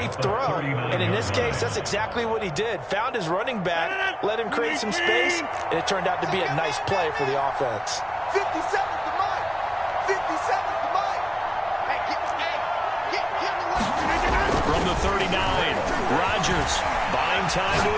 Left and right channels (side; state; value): both; identical; correlation 1.00